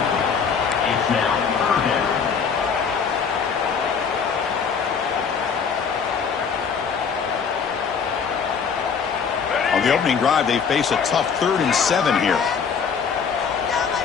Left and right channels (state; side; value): quieter; right; 6.3 dB